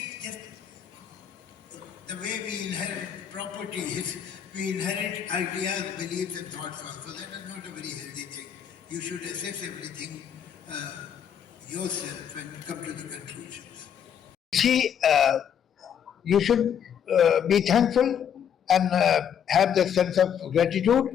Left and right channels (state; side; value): quieter; right; 8.5 dB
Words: just, the way we inherit properties, we inherit ideas, beliefs and thoughts also. That is not a very healthy thing. You should assess everything yourself and come to the conclusions. See, you should be thankful and have the sense of gratitude